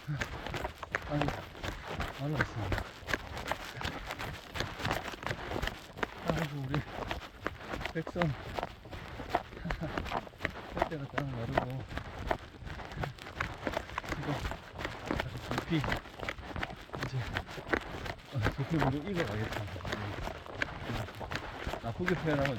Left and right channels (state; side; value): identical; both; correlation 1.00